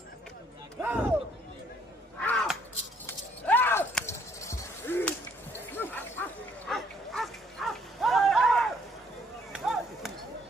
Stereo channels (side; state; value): both; normal; correlation 0.65